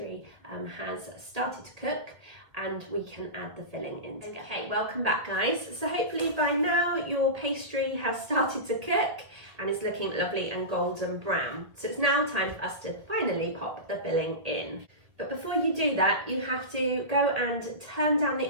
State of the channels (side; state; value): left; late; 1.7 ms